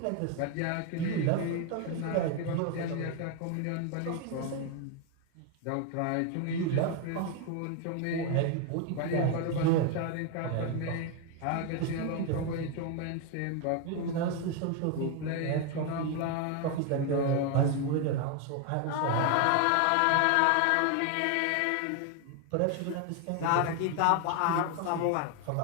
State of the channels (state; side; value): different; both; correlation 0.01